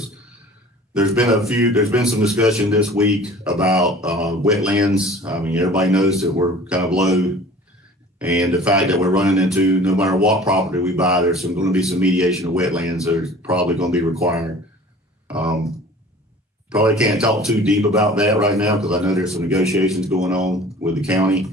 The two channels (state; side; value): normal; both; correlation 0.46